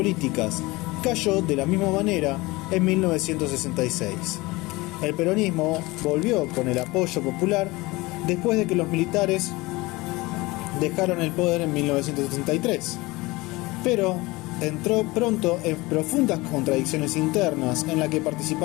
cayó de la misma manera en 1966. El peronismo volvió con el apoyo popular después de que los militares dejaron el poder en 1973, pero entró pronto en profundas contradicciones internas en las que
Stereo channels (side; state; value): right; quieter; 21.9 dB